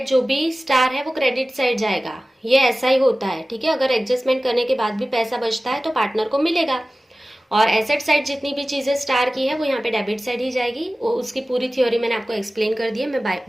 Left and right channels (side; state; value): both; normal; correlation 0.96